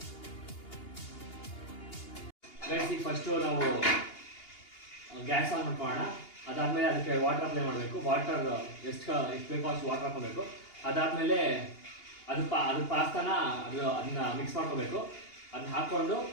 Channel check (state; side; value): late; right; 2.8 ms